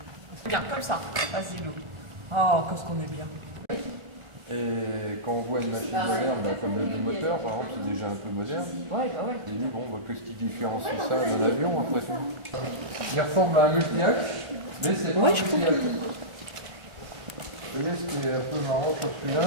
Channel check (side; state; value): left; late; 1.3 ms